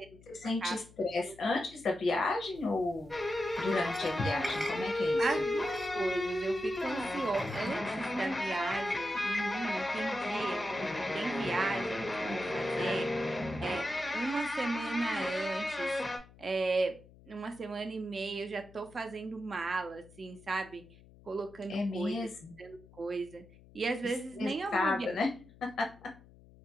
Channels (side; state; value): left; noise; hum, 23 dB below the sound